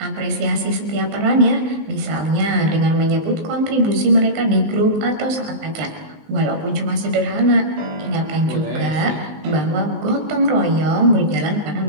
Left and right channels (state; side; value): late; left; 19 ms